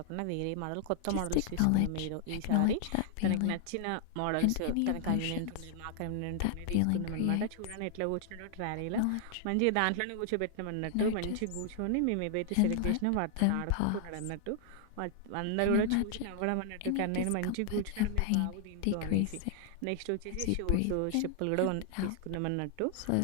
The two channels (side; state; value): both; different; correlation 0.00